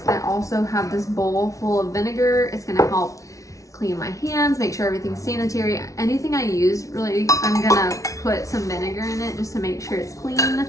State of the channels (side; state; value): right; late; 0.16 ms